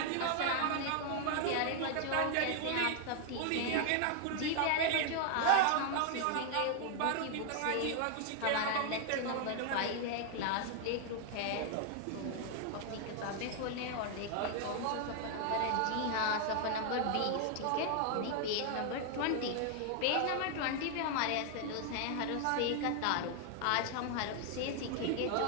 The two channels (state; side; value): different; both; correlation 0.00